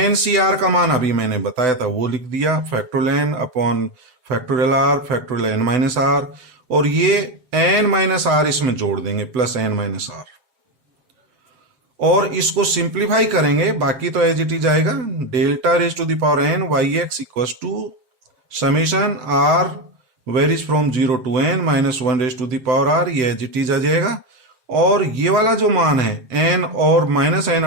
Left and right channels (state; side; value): late; left; 7.5 ms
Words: C R का मान अभी मैंने बताया था वो लिख दिया, factorial n upon factorial r, factorial n minus r, और ये n माइनस r इसमें जोड़ देंगे, प्लस n माइनस r, और इसको सिंप्लीफाई करेंगे, बाकी तो एज इट इज आएगा। Delta raise to the power n Y X equal to summation r varies from 0 to n minus 1 raise to the power r, ये एज इट इज आ जाएगा। और ये वाला जो मान है n और माइनस n